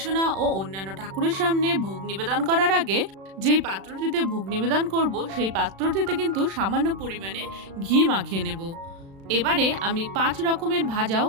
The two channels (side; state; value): left; late; 36 ms